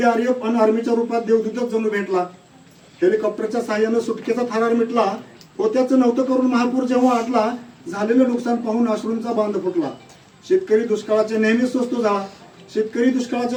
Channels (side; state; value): both; identical; correlation 1.00